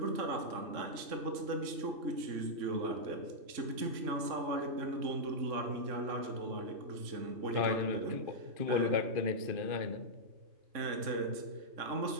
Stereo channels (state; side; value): late; left; 3.5 ms